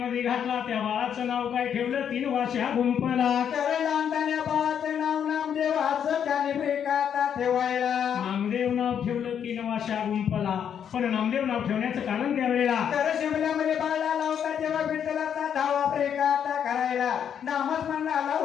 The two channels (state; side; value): quieter; right; 8.4 dB